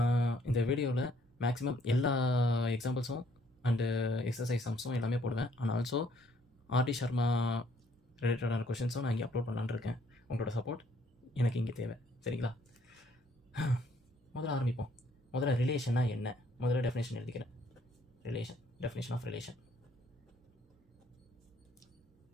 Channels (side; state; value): both; normal; correlation 0.64